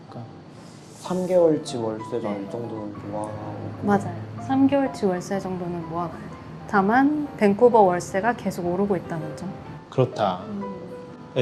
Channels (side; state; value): both; identical; correlation 1.00